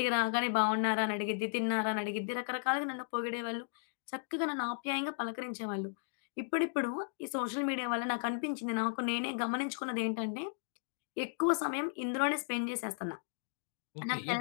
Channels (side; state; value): right; silent; digital silence